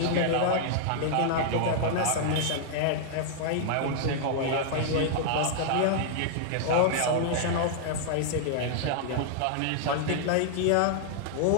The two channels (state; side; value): different; both; correlation -0.01